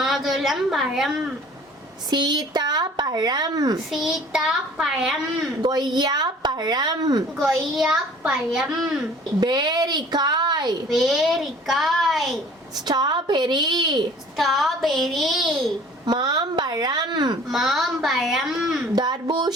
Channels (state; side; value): normal; both; correlation 0.50